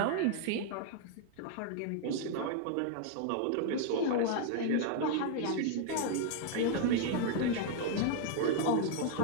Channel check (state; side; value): different; both; correlation 0.00